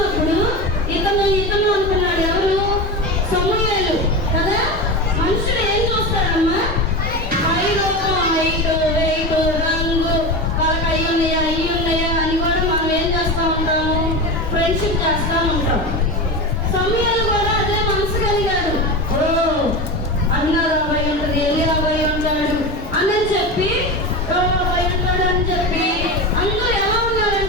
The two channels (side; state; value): both; normal; correlation 0.24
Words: ఇతను అనుకున్నాడు. ఎవరు? సమూయేలు కదా. మనుషులు ఏం చూస్తారమ్మా? హైట్, వెయిట్, రంగు, వాళ్ళకి అయ్యి ఉన్నాయా అని కూడా మనం ఏం చేస్తూ ఉంటాము? ఫ్రెండ్షిప్ చేస్తూ ఉంటాం. సమూయేలు కూడా అదే మనసు కలిగాడు. అన్నారు అబ్బాయి ఉంటుంది, ఎల్లి అబ్బాయి ఉంటాడు అని చెప్పి అబ్బాయి ఉంటాడు అని చెప్పి అందరూ ఎలా